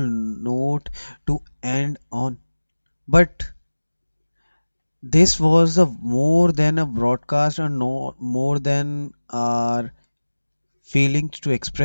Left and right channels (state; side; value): inverted; both; correlation -1.00